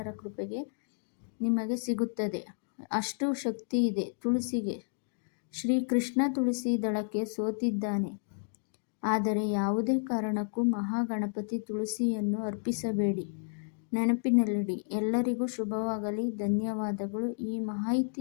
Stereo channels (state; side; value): silent; right; digital silence